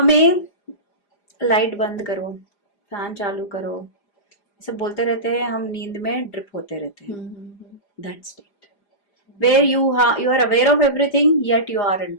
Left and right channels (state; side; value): late; right; 4.9 ms